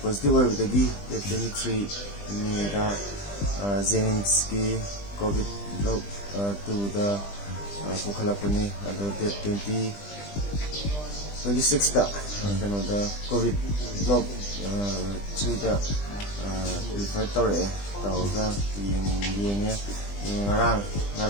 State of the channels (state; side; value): late; right; 20 ms